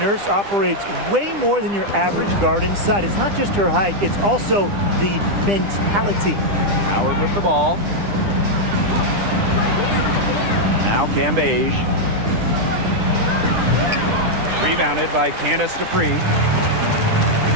operates way more than your average guard inside. It's not just her height, it's also the mentality. Howard with the ball. Now Cambage. Rebounded by Candace Dupree.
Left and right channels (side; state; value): left; late; 10 ms